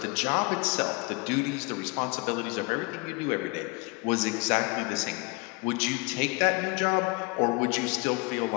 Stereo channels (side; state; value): right; quieter; 28.2 dB